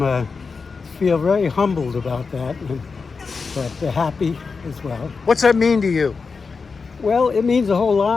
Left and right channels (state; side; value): quieter; right; 4.8 dB